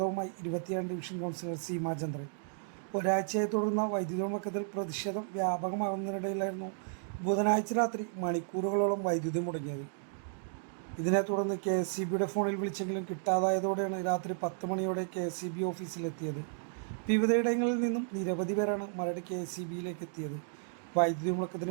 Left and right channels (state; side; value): silent; left; digital silence